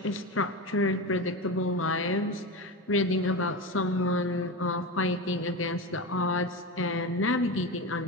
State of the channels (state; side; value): normal; both; correlation 0.22